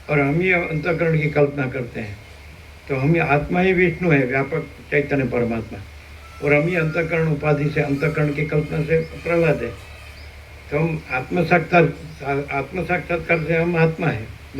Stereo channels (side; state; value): both; identical; correlation 1.00